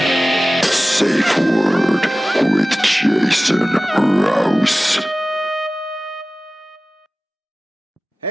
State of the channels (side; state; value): both; normal; correlation 0.97